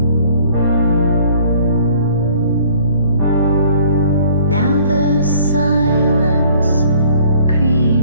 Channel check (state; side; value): inverted; both; correlation -0.55